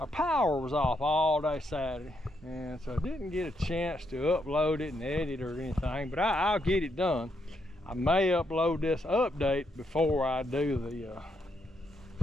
power was off all day Saturday, and so I didn't get a chance to upload it and edit or anything, but I'll get it done. I may upload this update before I do the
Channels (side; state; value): both; normal; correlation 0.78